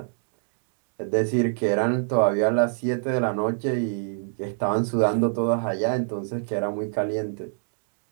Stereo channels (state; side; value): silent; left; digital silence